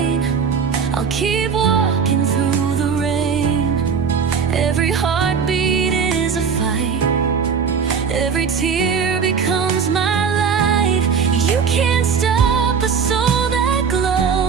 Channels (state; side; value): quieter; left; 6.2 dB